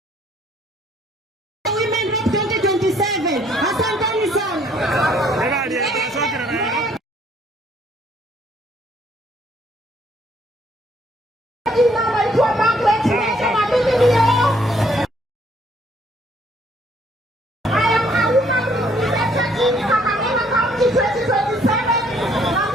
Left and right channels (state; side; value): normal; both; correlation 0.65